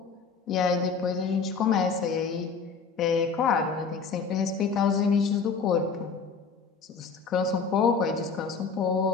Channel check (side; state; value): right; quieter; 5.2 dB